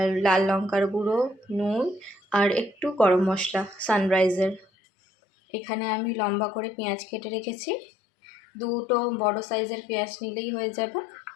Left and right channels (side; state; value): right; drops out; at 4.7 s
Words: লাল লঙ্কার গুঁড়ো, নুন আর একটু গরম মশলা সানরাইজের। এখানে আমি লম্বা করে পেঁয়াজ কেটে রেখেছি, 2টো বড় সাইজের পেঁয়াজ নিলেই হয়ে যাবে।